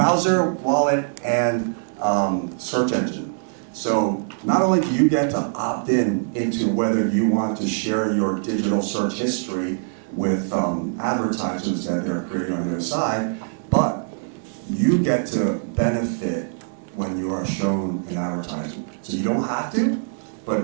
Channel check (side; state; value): left; silent; 59 dB below the other